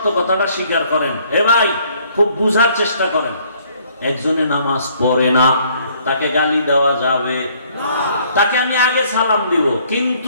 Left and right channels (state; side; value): inverted; both; correlation -0.62